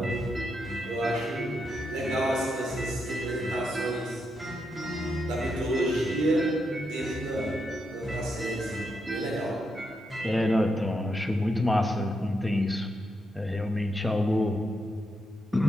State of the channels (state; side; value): normal; both; correlation 0.82